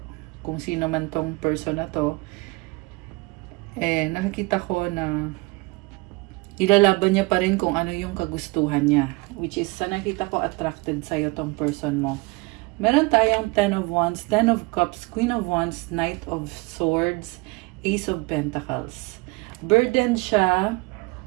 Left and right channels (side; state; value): left; quieter; 25.5 dB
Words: kung sino man tong person na to, nakikita ko na ilalaban niya pa rin kung ano yung kagustuhan niya, which is sa nakita ko attracted sa'yo tong person mo. Meron tayong 10 of Wands, 10 of Cups, Queen of Wands, Knight of Swords, Ace of Pentacles. Burden siya